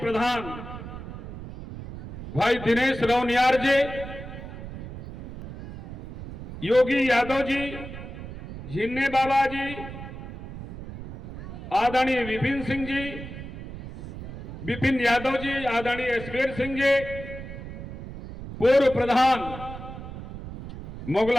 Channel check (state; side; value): noise; right; rumble, 11 dB below the sound